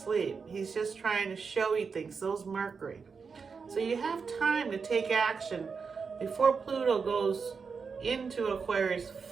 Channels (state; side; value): quieter; left; 5.4 dB